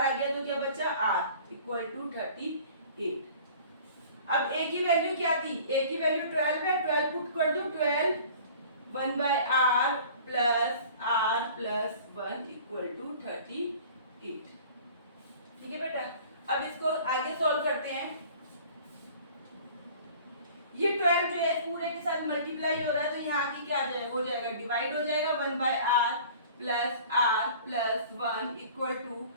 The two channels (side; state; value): both; inverted; correlation -0.47